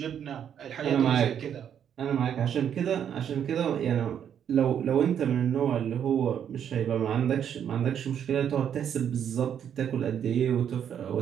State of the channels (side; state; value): left; quieter; 8.9 dB